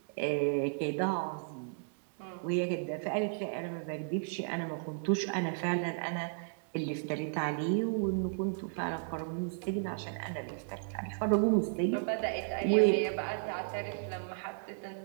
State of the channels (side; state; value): left; silent; digital silence